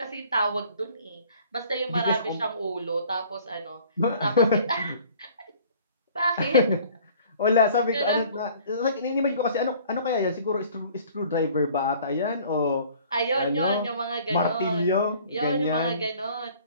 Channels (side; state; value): both; inverted; correlation -0.53